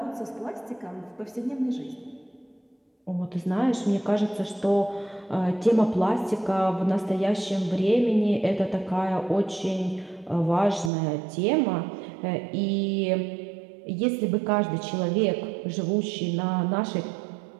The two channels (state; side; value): drops out; left; at 10.9 s